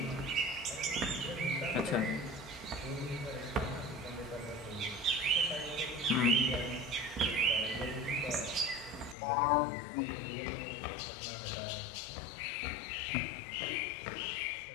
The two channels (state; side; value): drops out; right; at 9.2 s